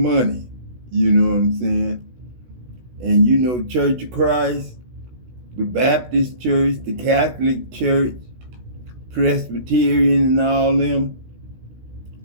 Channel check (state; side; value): late; left; 16 ms